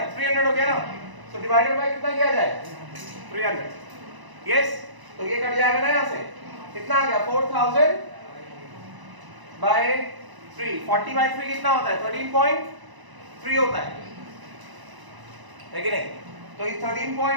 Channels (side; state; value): left; late; 1.0 ms